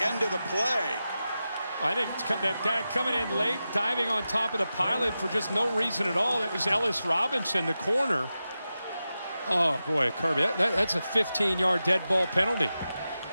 end of the play. I think that guy coming in late, diving on top of the pilot for just no reason at all. That was Ellis Robinson, the corner. Oh, boy, Kirby, that's a 15-yard dead ball penalty.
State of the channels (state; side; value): inverted; both; correlation -0.92